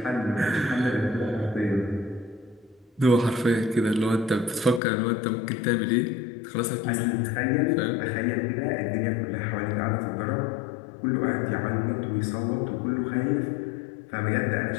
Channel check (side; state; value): right; drops out; at 4.8 s